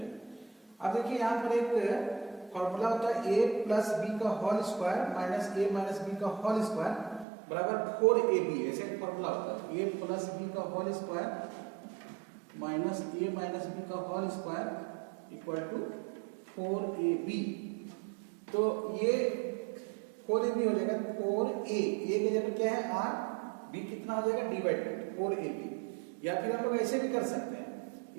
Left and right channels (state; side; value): drops out; left; at 7.2 s